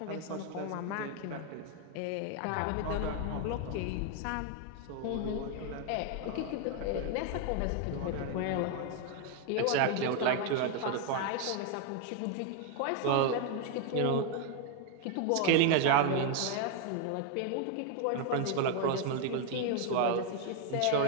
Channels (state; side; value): different; both; correlation 0.01